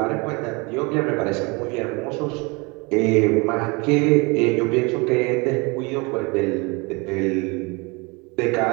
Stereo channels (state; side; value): quieter; left; 27.9 dB